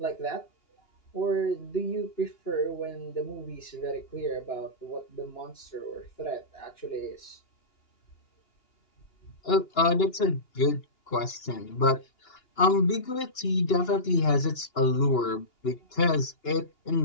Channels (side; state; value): right; late; 2.9 ms